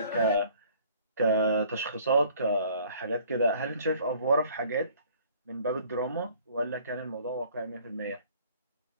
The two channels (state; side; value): inverted; both; correlation -0.55